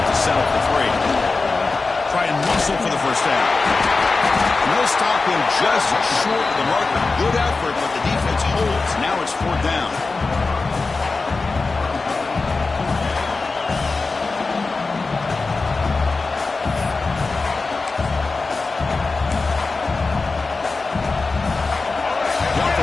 to settle for 3? Try and muscle for the first down. No stop him just short of the marker. Good effort, but the defense holds. Now it's 4th down. The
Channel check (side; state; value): right; quieter; 3.9 dB